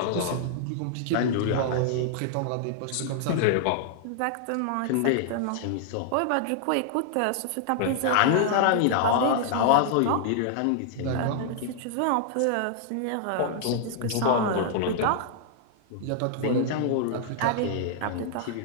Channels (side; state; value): both; different; correlation -0.01